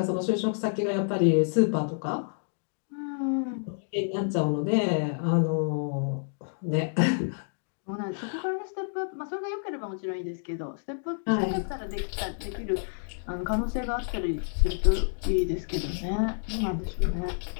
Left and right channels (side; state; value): right; silent; digital silence